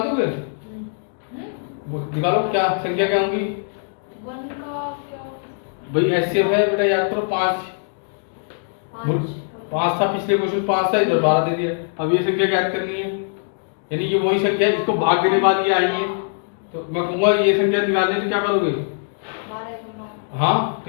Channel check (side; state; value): right; silent; digital silence